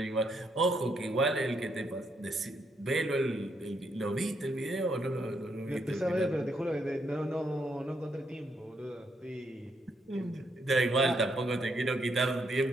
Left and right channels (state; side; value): normal; both; correlation 0.76